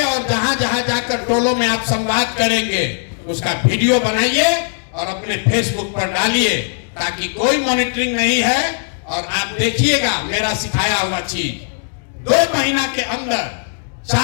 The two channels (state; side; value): silent; right; digital silence